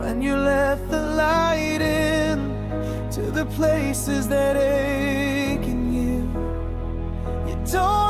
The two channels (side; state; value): both; identical; correlation 1.00